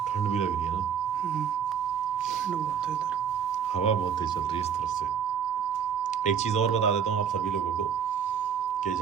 ठंड भी लग रही है ना, ठंड बहुत है इधर। हवा बहुत तेज चल रही है इस तरफ से। एक चीज़ और बता देता हूँ आप सभी लोगों को कि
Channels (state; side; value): quieter; left; 7.7 dB